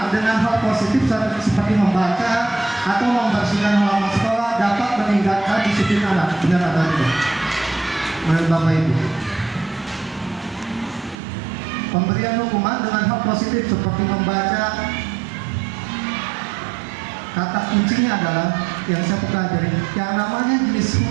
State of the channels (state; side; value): drops out; left; at 11.2 s